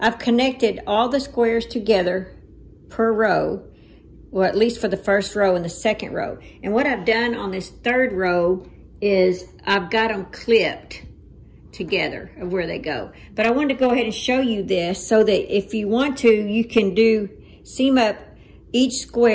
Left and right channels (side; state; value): both; identical; correlation 1.00